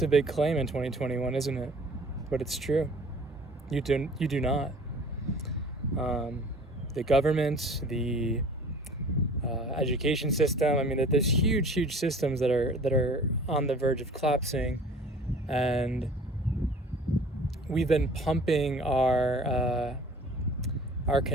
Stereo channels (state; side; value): normal; both; correlation 0.47